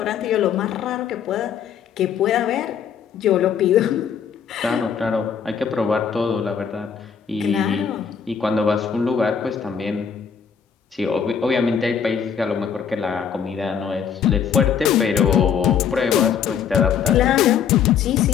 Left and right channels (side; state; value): right; quieter; 7.4 dB